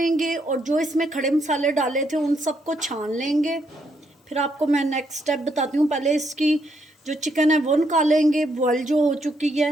और जो इसमें खड़े मसाले डाले थे उन सबको छान लेंगे। फिर आपको मैं नेक्स्ट स्टेप बताती हूँ। पहले इसकी जो चिकन है वो निकालेंगे, बॉयल जो हो चुकी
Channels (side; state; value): both; normal; correlation 0.75